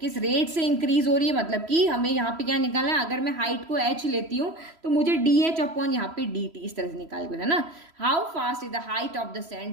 रेट से इंक्रीज हो रही है। मतलब कि हमें यहाँ पे क्या निकालना है, अगर मैं हाइट को h लेती हूँ तो मुझे dh अपॉन यहाँ पे dt इस तरह से निकाल के बताना। How fast is the height of the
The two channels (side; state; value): left; late; 3.0 ms